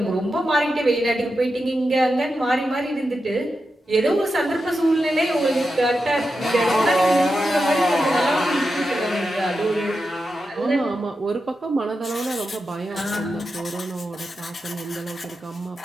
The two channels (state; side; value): normal; both; correlation 0.89